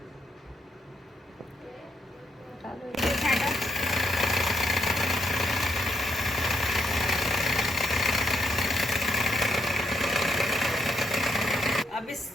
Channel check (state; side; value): normal; both; correlation 0.78